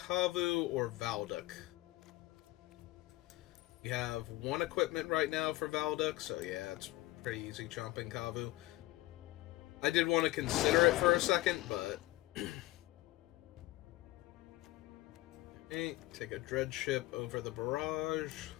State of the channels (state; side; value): quieter; right; 18.4 dB